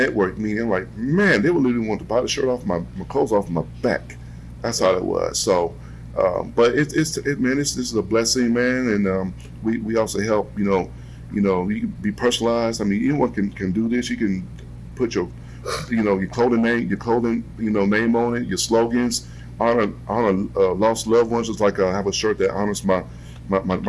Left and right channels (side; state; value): both; identical; correlation 1.00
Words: meeting, like, man, they would literally want to buy the shirt off my clothes off my back. That's how it was. So, but this is a blessing, man. And we also help, you can be personalized. I mean, anyone can do this. You can put your your clothing name, name on it, your slogans, honor lost loved ones. Just like I have a shirt that honors my